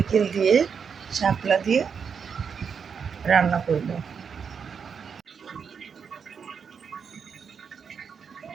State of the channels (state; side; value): quieter; left; 6.5 dB